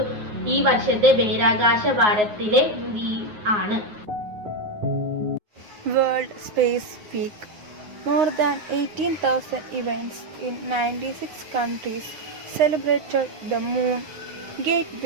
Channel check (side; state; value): left; late; 9.5 ms